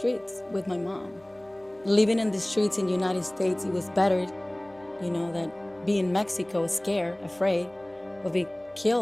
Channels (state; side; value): noise; left; hum, 30 dB below the sound